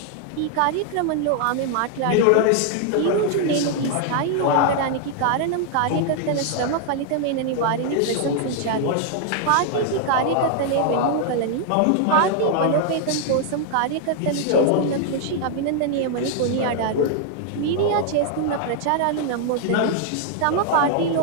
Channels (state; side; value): different; both; correlation 0.00